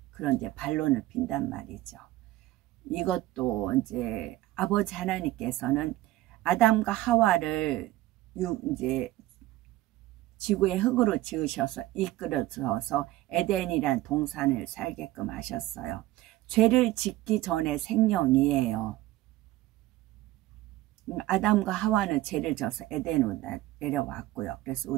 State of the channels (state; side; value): quieter; left; 16.6 dB